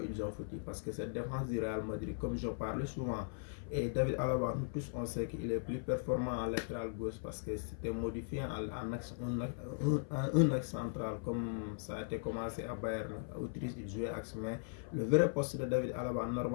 ils ont foutu parce que cette défense du Real Madrid, comme je parle souvent, et David Alaba, nous tous on sait qu'il est plus performant en latéral gauche parce que c'était modifié en un axe central comme ça a été commencé à Bayern. Autriche, il jouait axe, mais le vrai poste de David Alaba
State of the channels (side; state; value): right; silent; 52 dB below the other